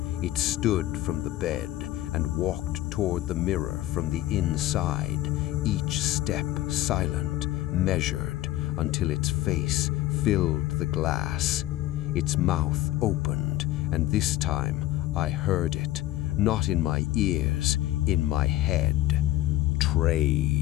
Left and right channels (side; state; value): right; quieter; 15.2 dB